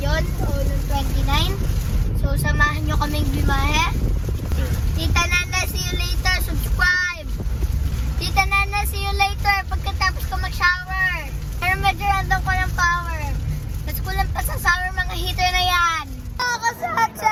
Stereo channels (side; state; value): both; identical; correlation 1.00